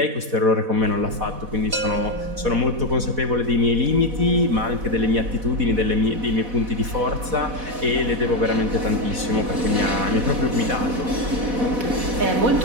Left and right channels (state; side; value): late; left; 4.1 ms